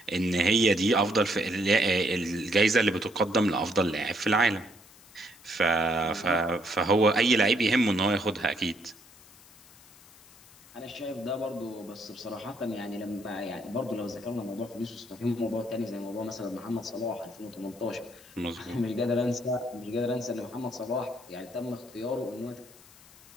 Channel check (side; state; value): left; noise; hiss, 24 dB below the sound